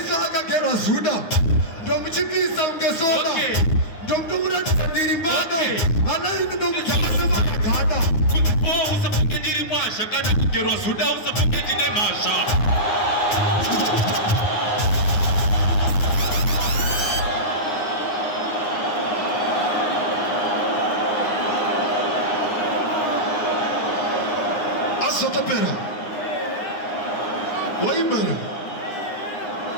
akagerwa Zuda. Ndomuchipisa ungesoda. Ndomkuratidza ndiri mbada. Anaini ndomuchakasema magada. Kuti usafunge ndiri mwasha kana kugerwa Zuda usafunge ndine masha. Asotopera.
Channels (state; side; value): late; right; 9.7 ms